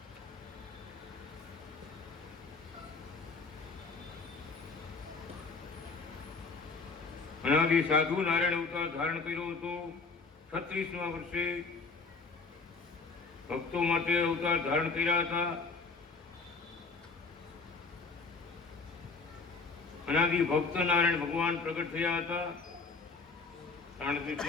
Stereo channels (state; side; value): quieter; right; 4.4 dB